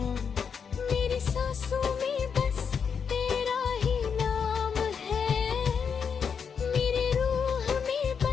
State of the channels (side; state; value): right; quieter; 6.6 dB